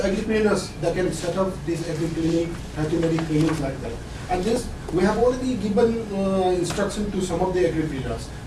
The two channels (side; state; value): both; identical; correlation 1.00